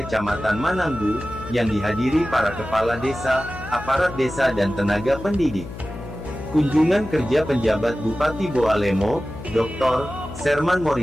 Mananggu, yang dihadiri para kepala desa, aparat desa dan tenaga pendidik. Kunjungan kerja penjabat Bupati Boalemo, Dr. Serman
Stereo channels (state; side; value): noise; left; hum, 12 dB below the sound